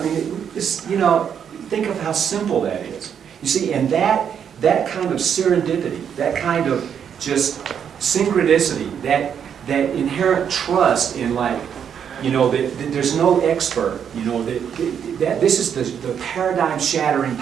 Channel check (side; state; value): left; quieter; 8.1 dB